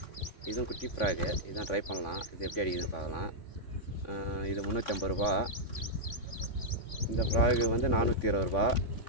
இதுவும் குட்டி ஃப்ராகு, இதுதான் ட்ரை பண்ணலாம். இது எப்படி அடிக்குதுன்னு பார்க்கலாம். இது 350 ரூபா. இந்த ஃப்ராகு வந்து 420 ரூபா.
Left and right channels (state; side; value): late; right; 3.6 ms